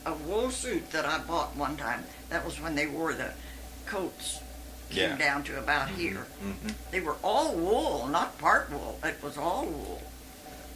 wool suit that I bought one time. That was when they wore the coats came down to about here. They were all wool, not part wool. It was all wool.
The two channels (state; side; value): identical; both; correlation 1.00